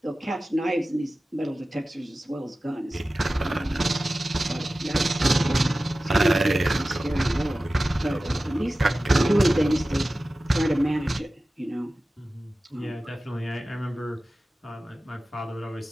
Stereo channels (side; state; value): both; normal; correlation 0.95